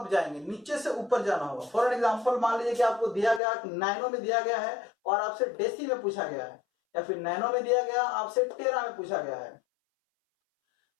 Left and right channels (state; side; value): drops out; right; at 3.4 s